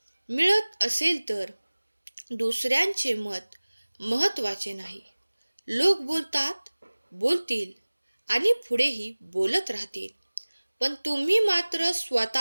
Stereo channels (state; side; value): inverted; both; correlation -1.00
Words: मिळत असेल तर दुसऱ्यांचे मत महत्त्वाचे नाही. लोक बोलतात, बोलतील आणि पुढेही बोलत राहतील, पण तुम्ही मात्र